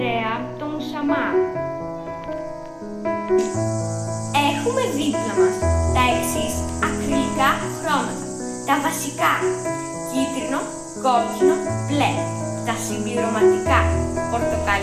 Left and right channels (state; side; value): identical; both; correlation 1.00